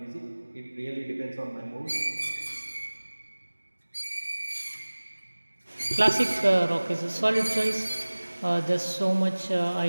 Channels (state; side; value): inverted; both; correlation -1.00